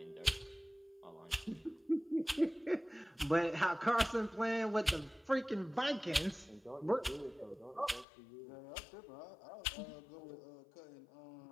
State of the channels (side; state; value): right; drops out; at 8.1 s